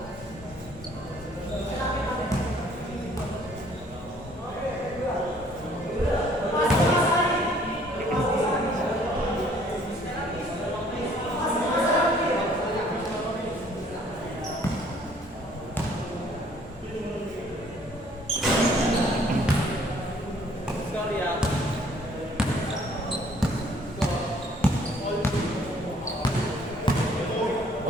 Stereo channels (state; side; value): normal; both; correlation 0.60